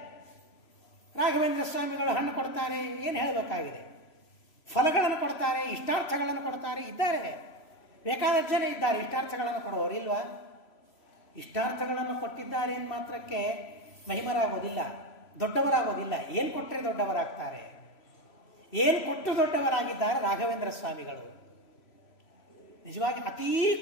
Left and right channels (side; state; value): right; late; 3.0 ms